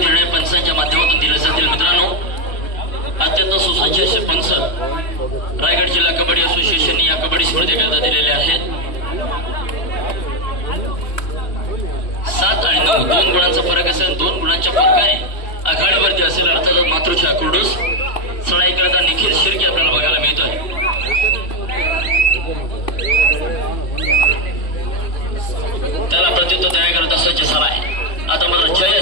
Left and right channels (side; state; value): right; late; 2.8 ms